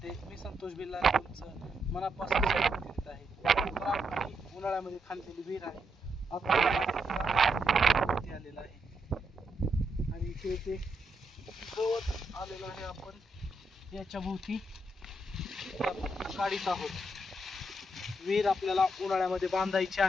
मी संतोष बिल्ला तुमचं मनापासून स्वागत करीत आहे. उन्हाळ्यामध्ये खाल्लेली विहीर आहे, आता आलेला आहे आणि इथे गवत आलेलं आहे. आपण याच्या भोवती काढीत आहोत. विहीर आपल्याला उन्हाळ्यामध्ये बांधायची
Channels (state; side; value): normal; both; correlation 0.81